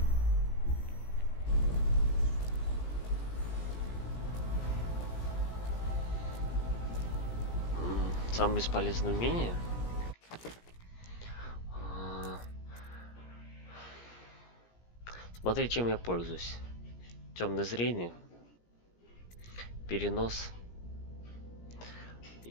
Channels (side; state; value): right; late; 17 ms